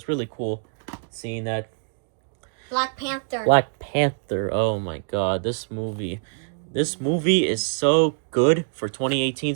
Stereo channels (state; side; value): silent; left; digital silence